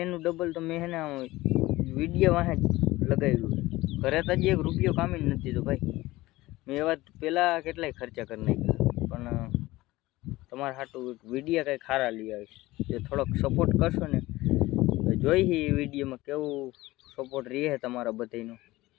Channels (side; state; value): right; quieter; 18.7 dB